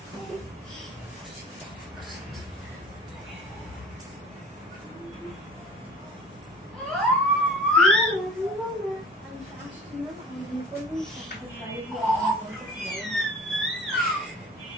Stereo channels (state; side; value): normal; both; correlation 0.42